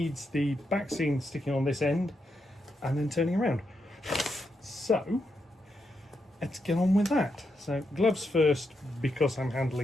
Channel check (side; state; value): both; normal; correlation 0.83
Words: the back scene sticking on this end and then turning around. So let's get on with that. So gloves first, because I'm